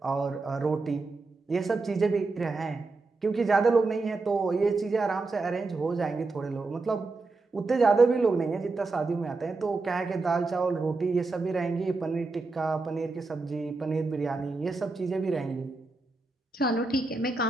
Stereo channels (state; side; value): quieter; left; 3.7 dB